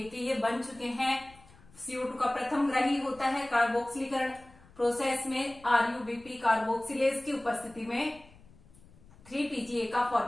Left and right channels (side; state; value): left; noise; rumble, 25 dB below the sound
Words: के, ये बन चुके हैं। CO2 का प्रथम ग्रही होता है कार्बोक्सिलीकरण प्रोसेस में RUBP कार्बोक्सिलेज की उपस्थिति में 3PGA का